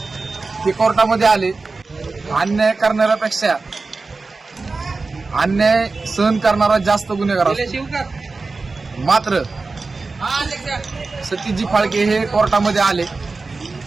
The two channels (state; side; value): quieter; left; 3.9 dB